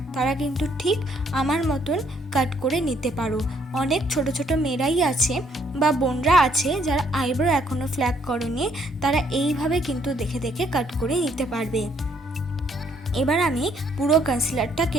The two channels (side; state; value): both; normal; correlation 0.68